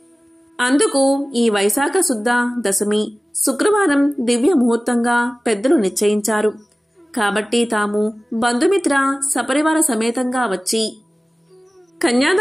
అందుకు ఈ వైశాఖ శుద్ధ దశమి శుక్రవారం దివ్య ముహూర్తంగా పెద్దలు నిశ్చయించారు. కాబట్టి తాము బంధుమిత్ర సపరివార సమేతంగా వచ్చి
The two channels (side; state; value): both; normal; correlation 0.97